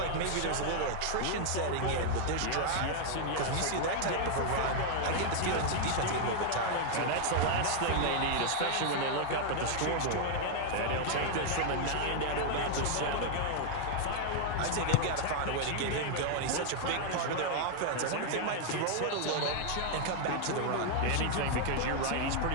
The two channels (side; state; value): both; different; correlation 0.00